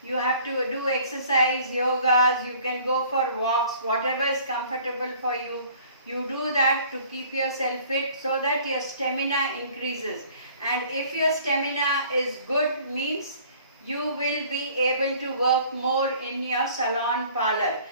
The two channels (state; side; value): inverted; both; correlation -0.53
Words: You have to do exercise, yogas, you can go for walks, whatever is comfortable for you. You do that to keep yourself fit so that your stamina increases. And if your stamina is good, means you will be able to work more in your salon parlor.